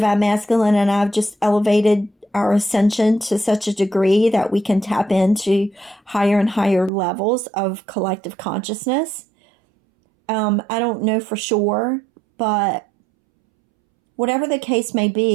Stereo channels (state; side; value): drops out; left; at 6.9 s